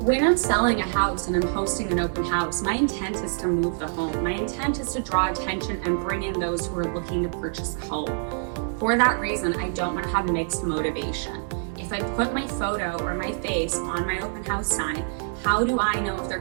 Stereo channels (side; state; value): left; silent; digital silence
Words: I'm selling a house and I'm hosting an open house, my intent is to move the home. My intent is to draw attention and bring in those who are looking to purchase a home. For that reason, I don't want to have mixed motivation. If I put my photo or my face on my open house sign, how do I know if they're